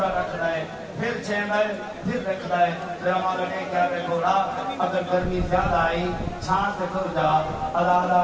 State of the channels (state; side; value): identical; both; correlation 1.00